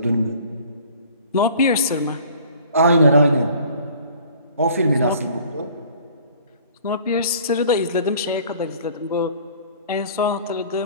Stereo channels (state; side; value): inverted; both; correlation -0.50